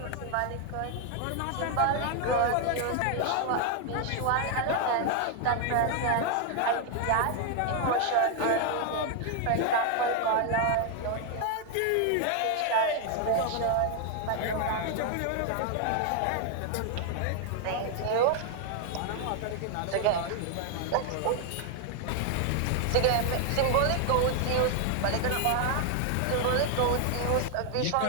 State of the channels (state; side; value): different; both; correlation 0.00